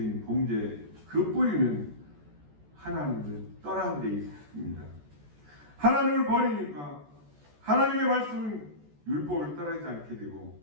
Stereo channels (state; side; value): late; left; 14 ms